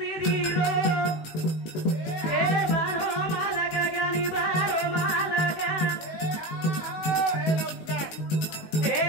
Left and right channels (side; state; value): right; late; 19 ms